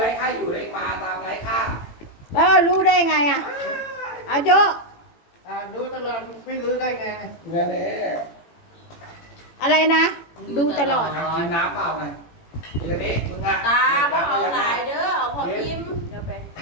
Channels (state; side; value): late; right; 18 ms